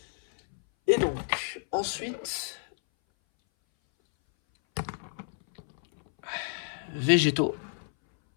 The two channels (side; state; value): right; silent; 58 dB below the other